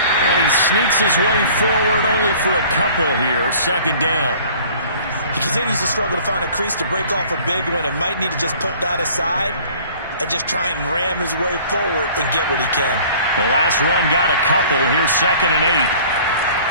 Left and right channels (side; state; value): both; inverted; correlation -0.50